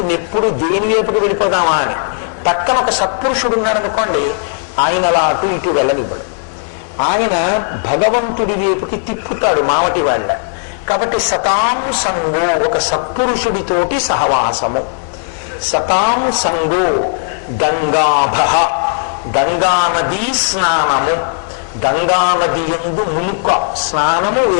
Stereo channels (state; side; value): silent; right; digital silence